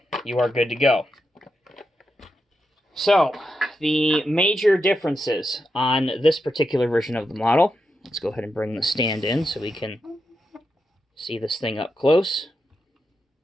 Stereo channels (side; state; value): both; normal; correlation 0.86